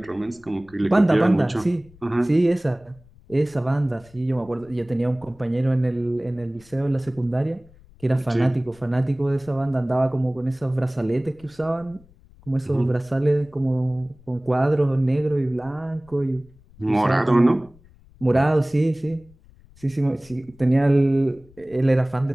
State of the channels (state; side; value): noise; left; rumble, 26 dB below the sound